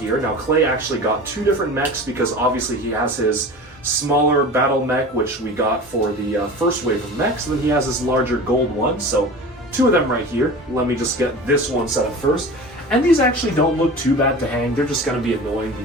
Now, Clay actually got 2 different mechs because obviously he has his smaller battle mech, which we got for the first wave of mechs, and then he has his larger gold one, so 2 of them right here. Let me just get this one set up first. And these actually don't look too bad to hang. They're just going to be annoying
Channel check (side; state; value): both; normal; correlation 0.35